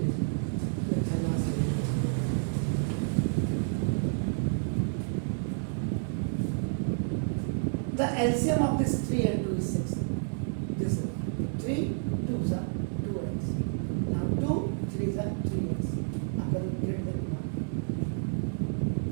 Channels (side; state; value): left; silent; digital silence